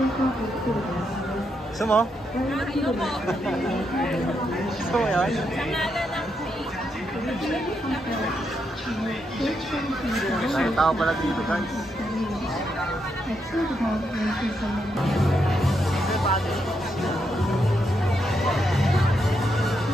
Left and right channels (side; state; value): both; normal; correlation 0.81